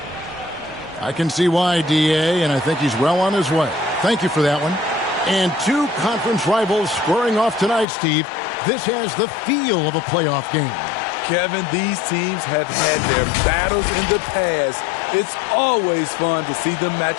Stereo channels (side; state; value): right; drops out; at 7.9 s